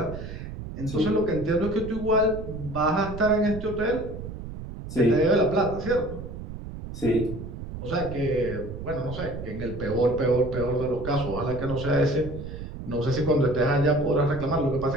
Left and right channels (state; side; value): noise; right; rumble, 9 dB below the sound